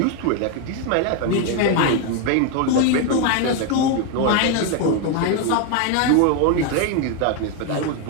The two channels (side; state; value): both; different; correlation 0.01